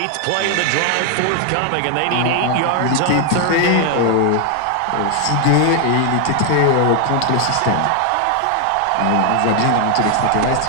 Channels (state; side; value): different; both; correlation 0.00